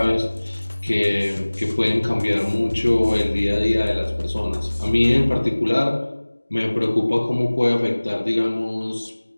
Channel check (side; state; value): both; inverted; correlation -1.00